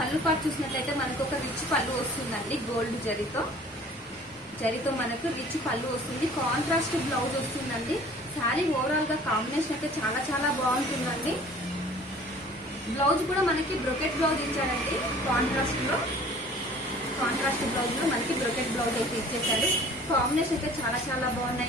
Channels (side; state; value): both; normal; correlation 0.49